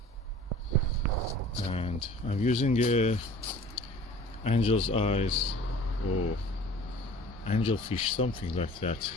And I'm using angel's eyes or angelfish, something like that.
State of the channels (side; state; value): both; normal; correlation 0.46